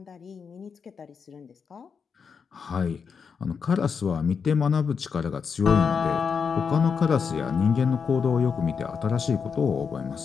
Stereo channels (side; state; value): right; quieter; 6.1 dB